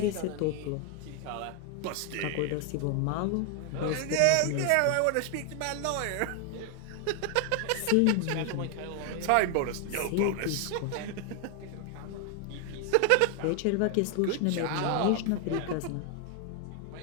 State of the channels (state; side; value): different; both; correlation 0.01